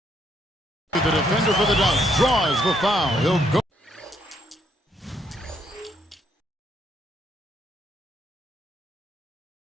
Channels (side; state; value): both; normal; correlation 0.72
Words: The defender for the dunk draws the foul. He'll go.